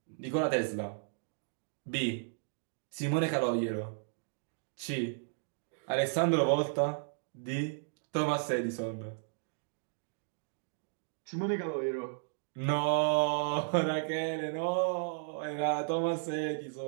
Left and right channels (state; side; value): silent; left; digital silence